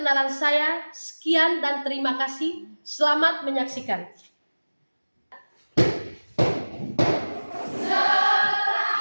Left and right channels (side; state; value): both; inverted; correlation -1.00